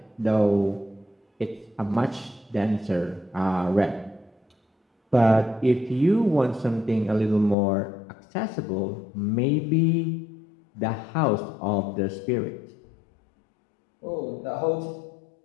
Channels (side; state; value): right; drops out; at 7.6 s